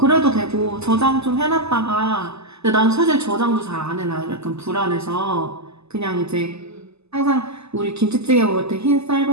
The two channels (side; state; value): left; late; 0.79 ms